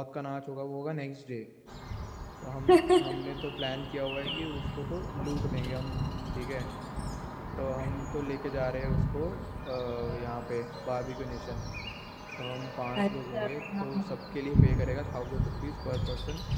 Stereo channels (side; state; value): both; identical; correlation 1.00